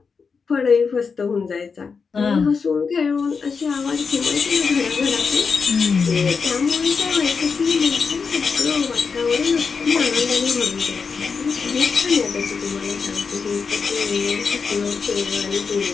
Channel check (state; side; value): quieter; right; 5.4 dB